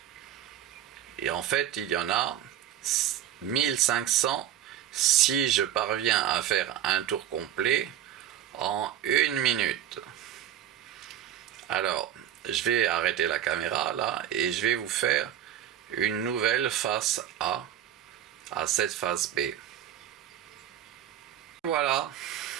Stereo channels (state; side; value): quieter; left; 11.1 dB